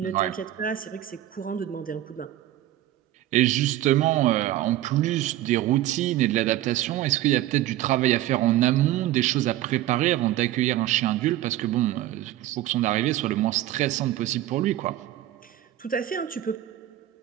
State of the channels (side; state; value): left; quieter; 13.9 dB